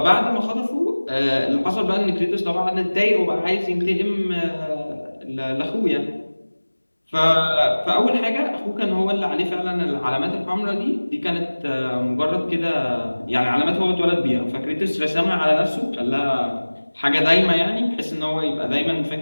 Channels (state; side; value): inverted; both; correlation -1.00